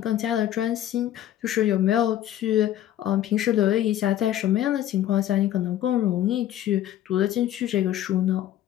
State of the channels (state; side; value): quieter; right; 12.1 dB